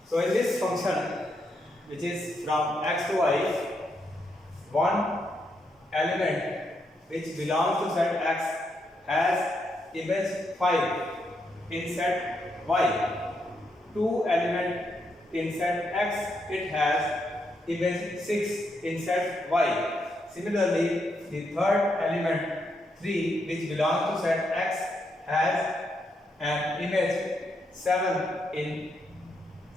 So in this function, which is from x to y, one element which belongs to set x has image 5 in set y. 2 element in set x, it has image 6 in set y. Similarly, the third element 3 which belongs to set x has an image 7 in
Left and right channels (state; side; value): normal; both; correlation 0.80